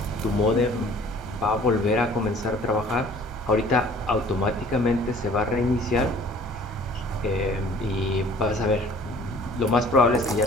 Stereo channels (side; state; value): both; normal; correlation 0.51